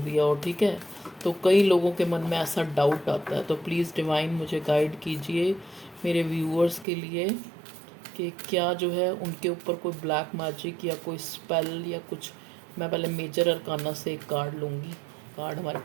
हो, ठीक है। तो कई लोगों के मन में ऐसा डाउट आता है, तो प्लीज़ डिवाइन मुझे गाइड कीजिए मेरे व्यूअर्स के लिए कि क्या जो है उनके ऊपर कोई ब्लैक मैजिक या कोई स्पेल या कुछ। मैं पहले मेजर अरकाना से एक कार्ड लूँगी। कार्ड हमारे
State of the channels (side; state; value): left; drops out; at 6.9 s